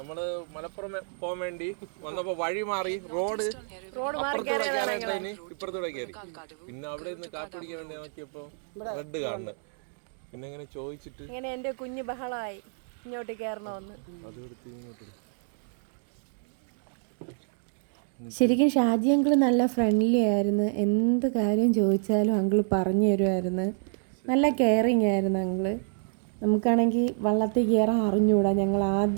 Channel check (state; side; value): silent; left; 59 dB below the other